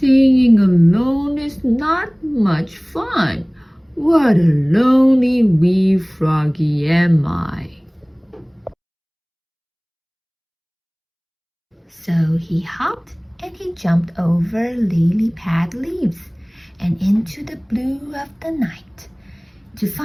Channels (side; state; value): both; identical; correlation 1.00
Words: alone is not much fun. What a lonely wee froggy am I. So he hopped and he jumped over lily-pad leaves and into the blue of the night to